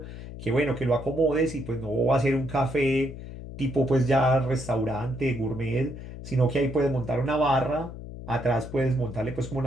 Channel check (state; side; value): noise; left; hum, 11 dB below the sound